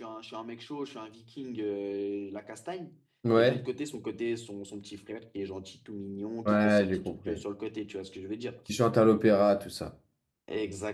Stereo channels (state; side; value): identical; both; correlation 1.00